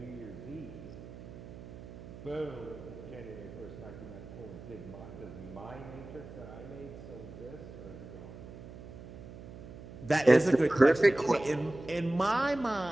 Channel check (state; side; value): noise; right; hum, 14 dB below the sound